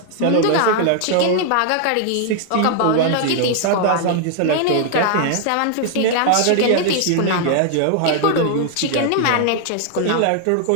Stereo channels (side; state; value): both; different; correlation 0.00